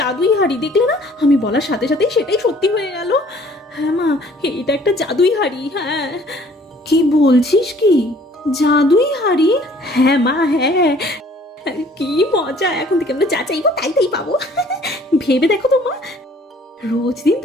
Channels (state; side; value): normal; both; correlation 0.56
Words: হাড়ি, দেখলে না আমি বলার সাথে সাথেই সেটাই সত্যি হয়ে গেল। হ্যাঁ মা, এটা একটা জাদুই হাড়ি। হ্যাঁ, কি বলছিস কি? জাদুই হাড়ি? হ্যাঁ মা, হ্যাঁ। কি মজা, এখন থেকে আমরা যা চাইবো তাই তাই পাবো। ভেবে দেখো তো মা, রোজ দিন